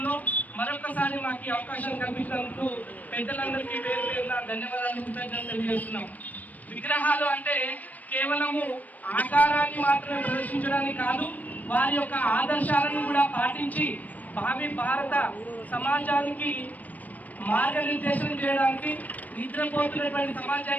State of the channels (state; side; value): late; right; 0.077 ms